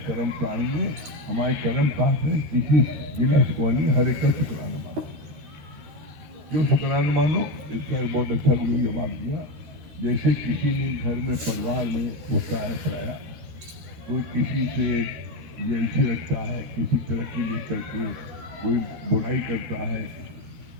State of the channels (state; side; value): late; left; 13 ms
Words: कर्म प्राणी में, हमारे कर्म पास में, किसी गिला शिकवा नहीं, हर एक का शुक्राना मानो। क्यों शुक्राना मानो? इसका एक बहुत अच्छा गुरु जवाब दिया। जैसे किसी ने घर में परिवार में होता है पराया, कोई किसी से जेलसी रखता है, किसी तरक्की लेकर के कोई बुराई करता है,